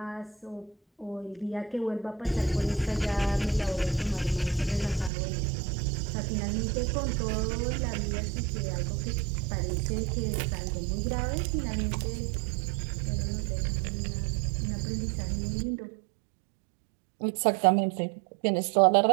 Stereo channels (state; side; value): drops out; left; at 5.1 s